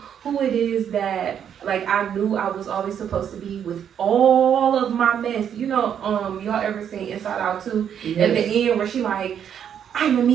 who it is that like I knew I was always supposed to be, with all of my mess, y'all ever seen Inside Out 2? At the end where she like, I'm a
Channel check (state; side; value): quieter; left; 8.7 dB